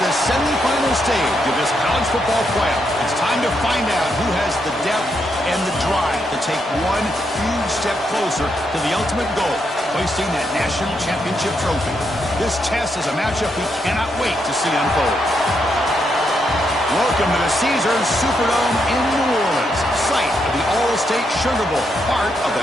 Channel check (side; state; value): both; normal; correlation 0.80